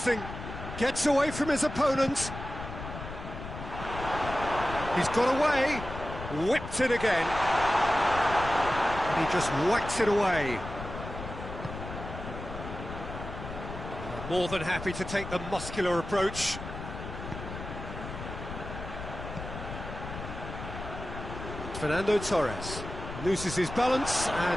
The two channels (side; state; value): left; noise; rumble, 9 dB below the sound